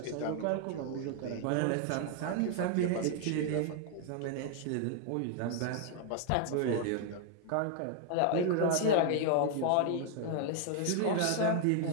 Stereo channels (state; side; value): different; both; correlation 0.00